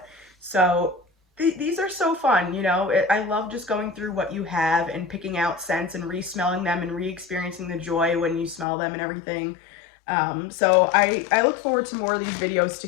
So these are so fun, you know. I love just going through what you have and picking out scents and re-smelling them and re-experiencing the joy when you smell them and everything. So I look forward to more of these videos to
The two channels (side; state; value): right; drops out; at 8.7 s